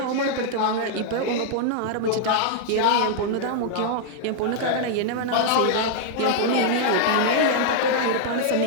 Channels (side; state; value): both; different; correlation -0.01